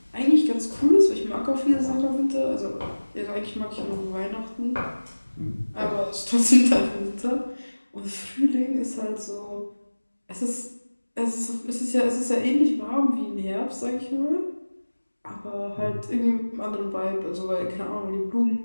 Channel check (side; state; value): both; inverted; correlation -1.00